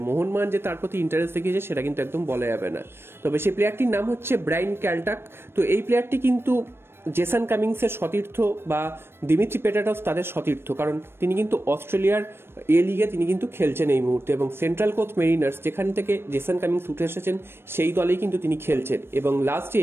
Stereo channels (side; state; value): left; late; 0.12 ms